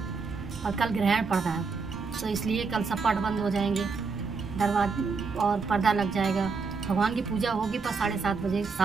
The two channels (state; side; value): quieter; left; 4.8 dB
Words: और कल ग्रहण पड़ रहा है, तो इसलिए कल सब पट बंद हो जाएंगे, दरवाजा और पर्दा लग जाएगा। भगवान की पूजा होगी पर 7:30 बजे